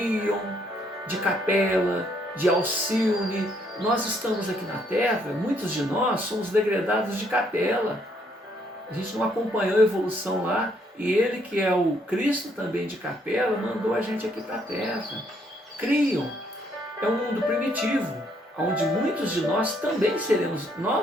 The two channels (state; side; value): normal; both; correlation 0.70